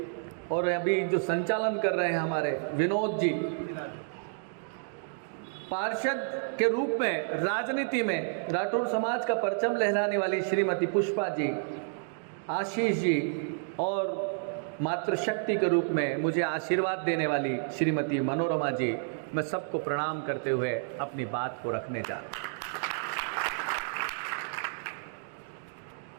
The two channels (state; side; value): silent; left; digital silence